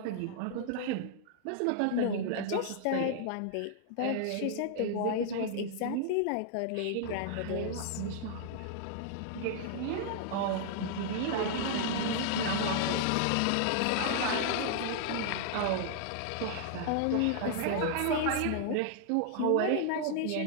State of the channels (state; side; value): different; both; correlation -0.01